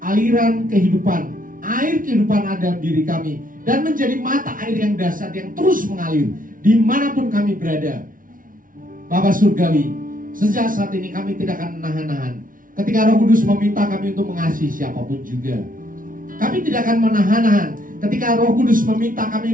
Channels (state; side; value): late; left; 0.39 ms